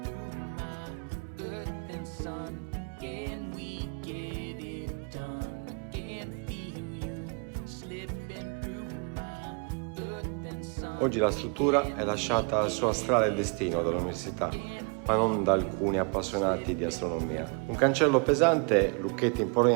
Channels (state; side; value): quieter; left; 35.6 dB